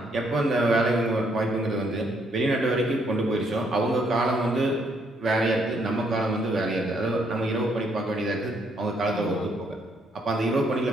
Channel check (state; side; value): normal; both; correlation 0.71